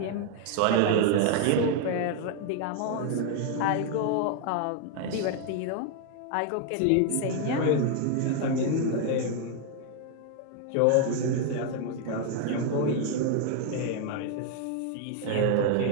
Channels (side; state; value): both; different; correlation 0.00